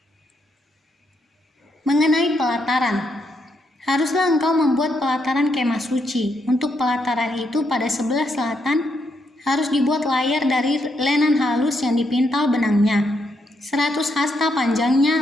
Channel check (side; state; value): both; normal; correlation 0.78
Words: Mengenai pelataran, haruslah engkau membuat pelataran kemah suci. Untuk pelataran itu pada sebelah selatan harus dibuat layar dari lenan halus yang dipintal benangnya, 100 hasta